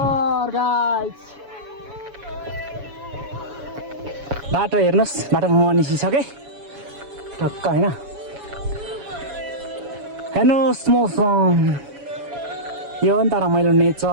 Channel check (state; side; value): late; left; 7.1 ms